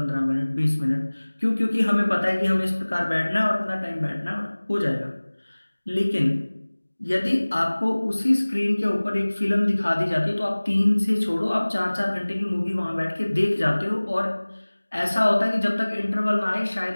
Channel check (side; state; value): both; inverted; correlation -1.00